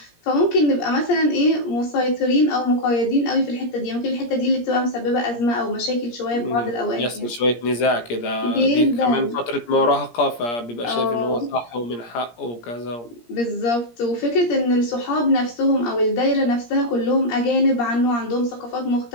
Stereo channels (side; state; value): right; late; 17 ms